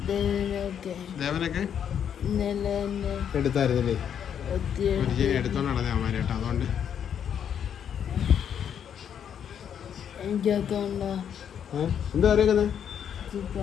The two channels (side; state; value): right; quieter; 8.6 dB